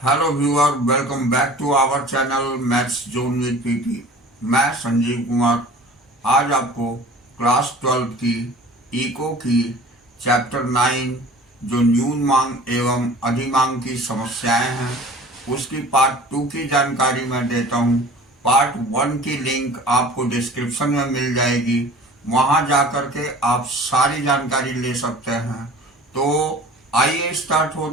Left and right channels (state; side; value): normal; both; correlation 0.44